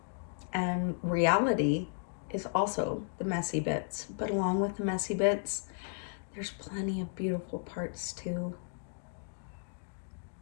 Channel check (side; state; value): right; silent; digital silence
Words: And reality is also the messy bits. But along with the messy bits, there's plenty of beautiful parts too.